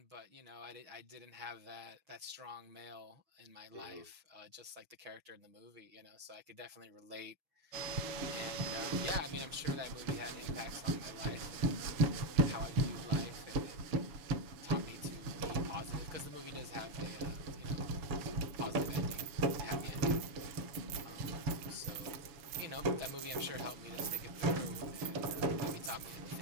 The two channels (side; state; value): left; late; 7.0 ms